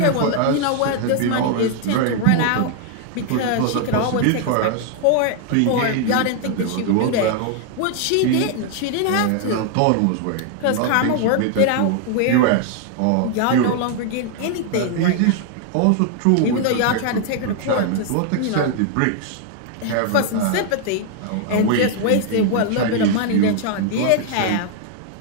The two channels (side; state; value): both; different; correlation 0.00